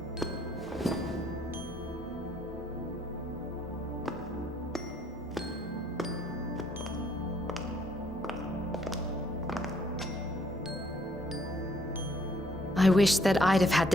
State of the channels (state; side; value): normal; both; correlation 0.66